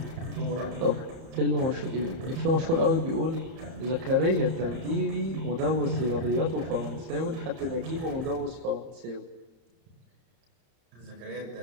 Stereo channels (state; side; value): late; left; 31 ms